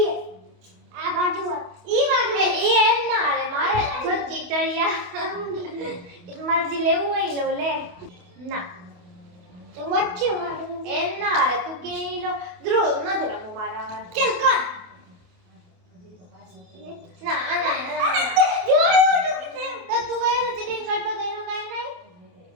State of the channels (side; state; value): left; late; 28 ms